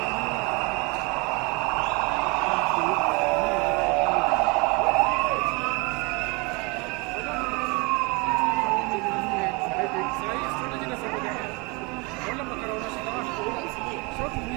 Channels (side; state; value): left; quieter; 28.5 dB